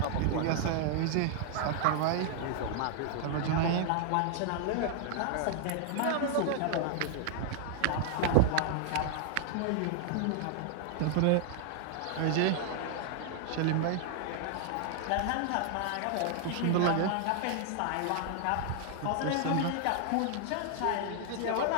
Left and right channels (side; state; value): both; different; correlation 0.00